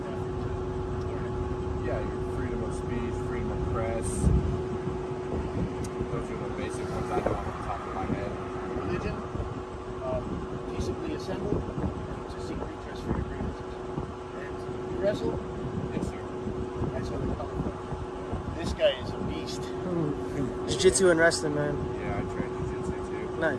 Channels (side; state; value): both; identical; correlation 1.00